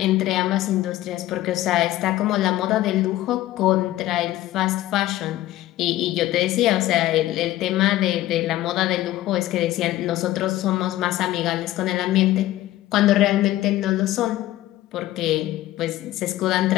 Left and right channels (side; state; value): right; quieter; 15.3 dB